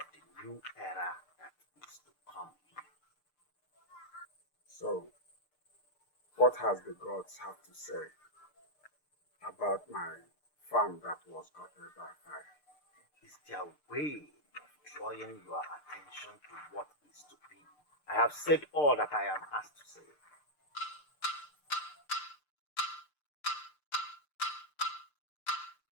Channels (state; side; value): late; right; 6.7 ms